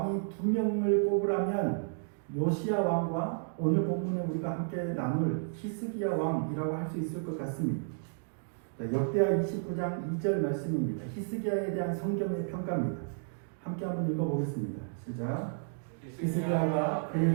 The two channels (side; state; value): left; silent; digital silence